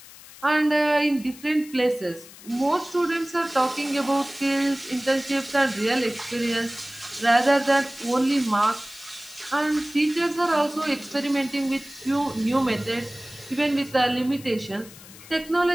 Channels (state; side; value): noise; left; hiss, 19 dB below the sound